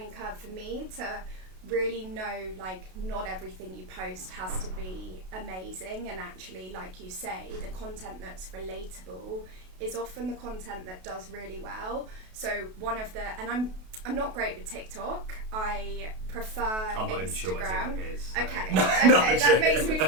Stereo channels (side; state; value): left; late; 32 ms